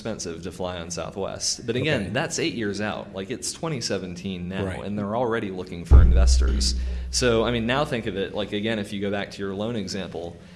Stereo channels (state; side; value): identical; both; correlation 1.00